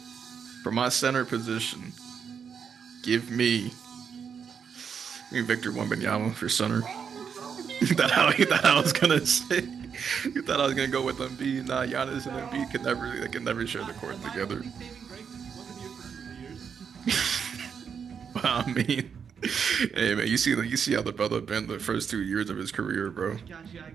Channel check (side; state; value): left; quieter; 6.9 dB